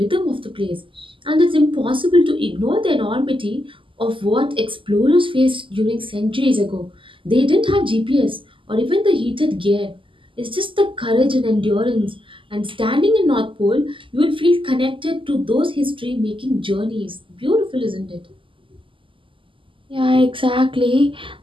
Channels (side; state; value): left; late; 0.25 ms